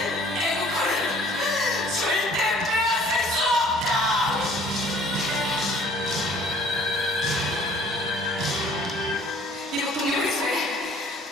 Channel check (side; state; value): both; normal; correlation 0.54